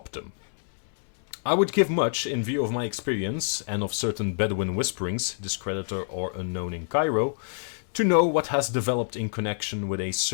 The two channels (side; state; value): right; silent; digital silence